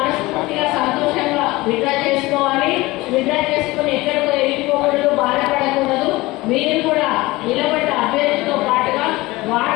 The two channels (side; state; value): right; quieter; 20.4 dB